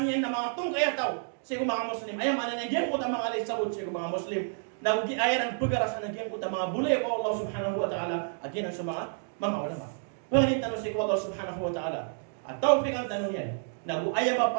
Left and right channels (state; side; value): silent; left; digital silence